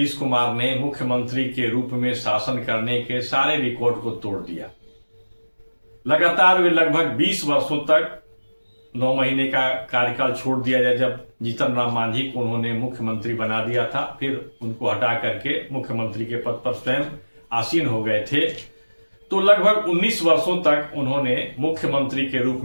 कुमार ने मुख्यमंत्री के रूप में शासन करने के सारे रिकॉर्ड को तोड़ दिया। लगातार वे लगभग 20 वर्षों तक 9 महीने का कार्यकाल छोड़ दिया जाए। जब जीतन राम मांझी को उन्होंने मुख्यमंत्री बना दिया था, फिर उनको हटा करके मुख्यमंत्री के पद पर स्वयं आसीन हो गए थे, तो लगभग 19 वर्षों तक उन्होंने मुख्यमंत्री के रूप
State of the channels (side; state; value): both; inverted; correlation -1.00